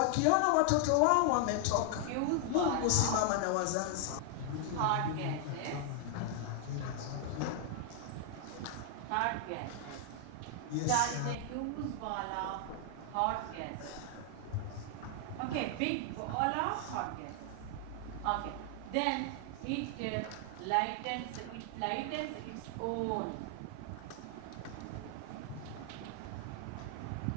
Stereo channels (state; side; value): different; both; correlation 0.00